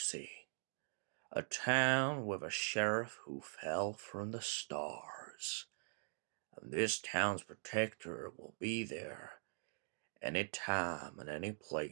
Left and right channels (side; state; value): left; silent; digital silence